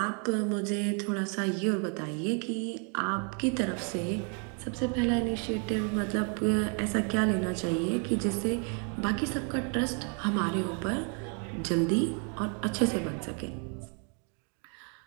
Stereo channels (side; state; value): left; quieter; 39.1 dB